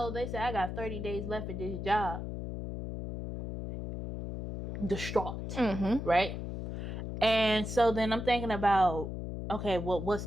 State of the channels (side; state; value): left; noise; hum, 6 dB below the sound